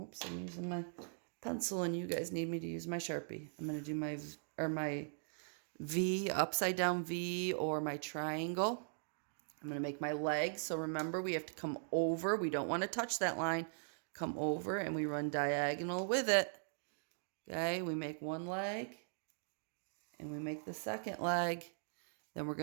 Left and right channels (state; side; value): silent; left; digital silence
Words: I'm using my pencil and you guys need me to use my Sharpie. I'm going to do my V, upside down V, or my triangle. I'm going to make my leg. So remember, we have to come over. We don't want to touch that line. Come over and we run diagonal with it. Okay, we make one leg and we make the second leg. Then we're